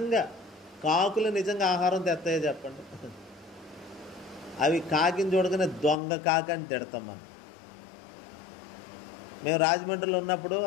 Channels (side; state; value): right; drops out; at 6.0 s